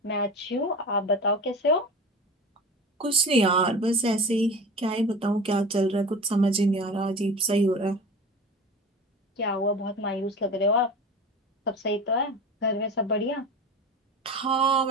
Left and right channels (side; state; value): both; normal; correlation 0.33